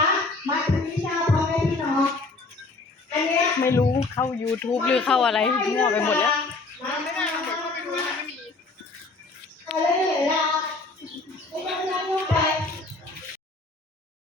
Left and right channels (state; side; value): quieter; right; 3.5 dB